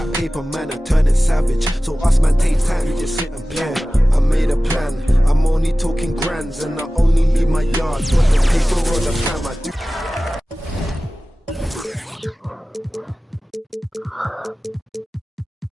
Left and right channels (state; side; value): normal; both; correlation 0.96